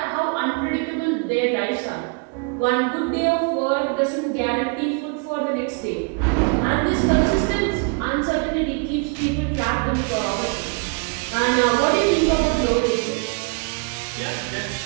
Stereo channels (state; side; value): quieter; left; 34.5 dB